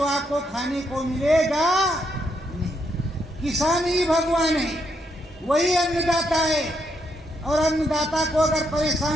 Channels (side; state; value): both; normal; correlation 0.77